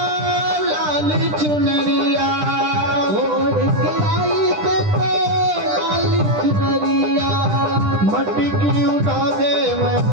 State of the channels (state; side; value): late; left; 10 ms